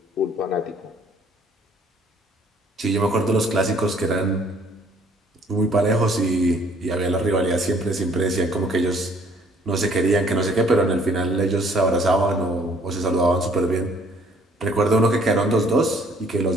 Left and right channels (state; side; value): normal; both; correlation 0.61